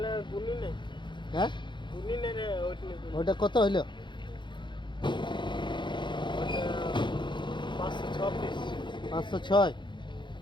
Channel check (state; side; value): late; right; 0.23 ms